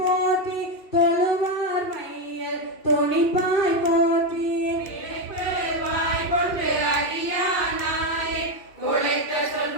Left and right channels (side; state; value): right; late; 2.5 ms